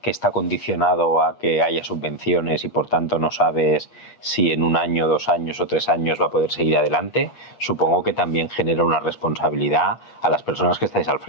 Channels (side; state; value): right; late; 8.4 ms